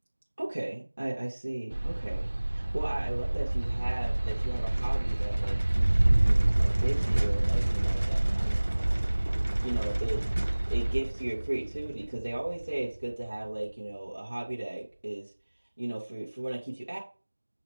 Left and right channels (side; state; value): both; inverted; correlation -1.00